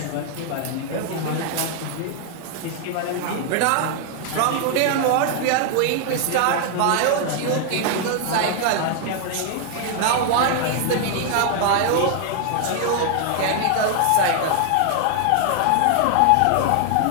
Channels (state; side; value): different; both; correlation 0.00